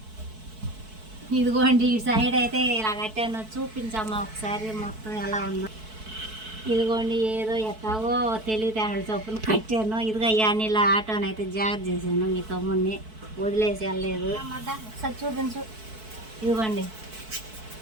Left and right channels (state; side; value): late; left; 4.6 ms